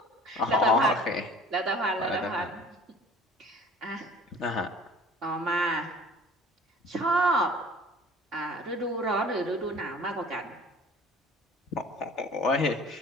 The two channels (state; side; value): normal; both; correlation 0.47